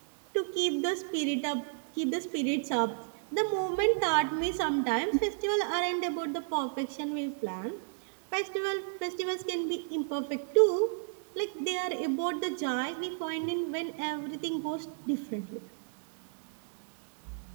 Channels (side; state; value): left; silent; digital silence